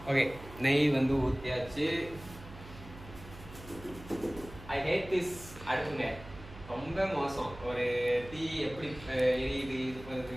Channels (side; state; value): right; noise; hum, 16 dB below the sound